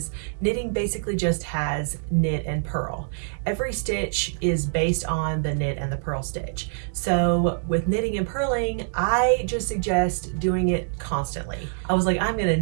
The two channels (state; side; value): silent; left; 62 dB below the other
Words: knitting basically just has knit and purl. Every stitch is based on the knit and the purl stitch. So with knitting and purling, I just suggest doing it constantly. I was like, I'm gonna